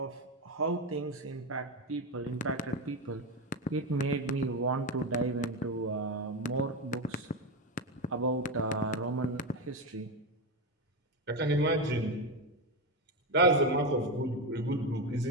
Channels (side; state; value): both; normal; correlation 0.13